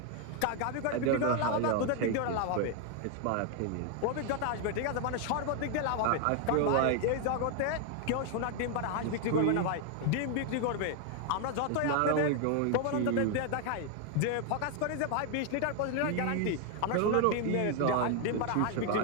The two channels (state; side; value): different; both; correlation 0.00